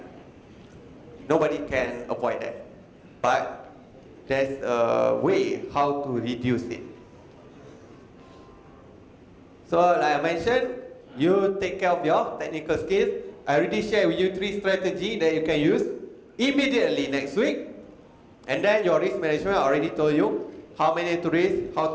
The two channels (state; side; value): identical; both; correlation 1.00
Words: Nobody can avoid that. But there's a way how to reduce it. So like I mentioned, you take care of your technical skills. I already shared with you 3 strategies that you can use immediately next week. And then your risk management, I already told you how many to risk, how